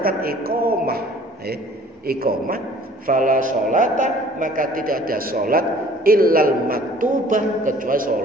iqamah fala sholata maka tidak ada salat illal maktubah kecuali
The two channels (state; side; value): normal; both; correlation 0.53